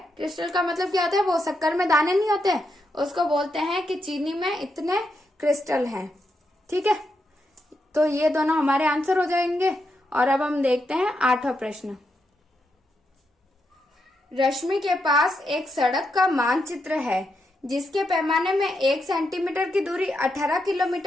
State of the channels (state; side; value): normal; both; correlation 0.83